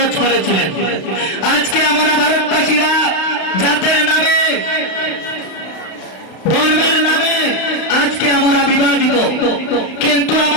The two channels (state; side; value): late; right; 32 ms